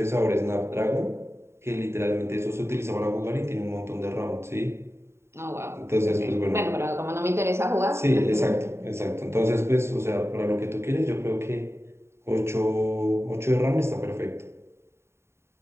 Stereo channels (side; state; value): left; late; 0.13 ms